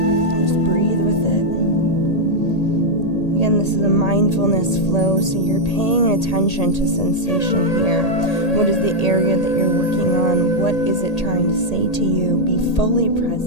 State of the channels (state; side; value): late; right; 1.8 ms